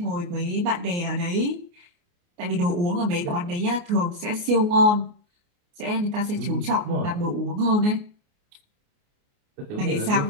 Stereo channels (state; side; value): late; left; 29 ms